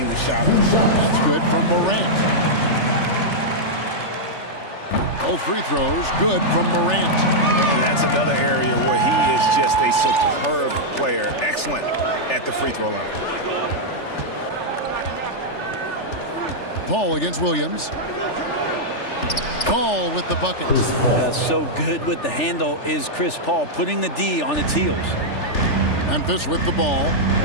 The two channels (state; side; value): late; right; 3.4 ms